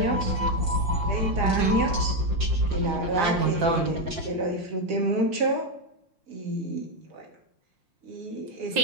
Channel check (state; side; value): late; left; 5.7 ms